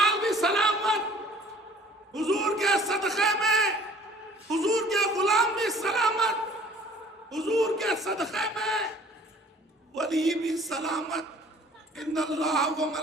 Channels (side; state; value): both; normal; correlation 0.53